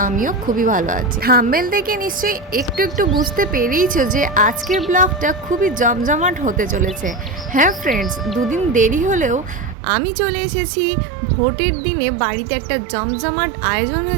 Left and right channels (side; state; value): left; drops out; at 9.8 s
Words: আমিও খুবই ভালো আছি। থাম্বনেল দেখে নিশ্চয়ই একটু একটু বুঝতে পেরেইছো যে আজকের ব্লগটা খুবই জমজমাট হতে চলেছে। হ্যাঁ ফ্রেন্ডস, দুদিন দেরি হলেও আমি চলে এসেছি ভোটের দিনে বাড়িতে একটা জমজমাট আয়োজন